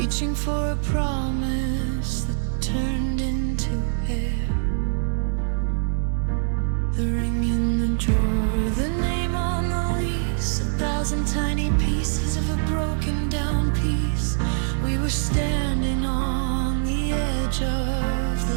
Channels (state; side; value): silent; left; digital silence